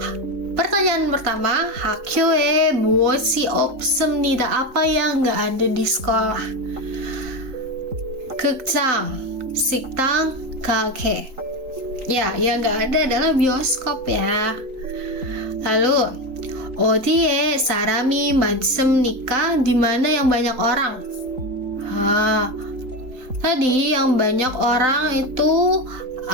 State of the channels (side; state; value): left; late; 3.9 ms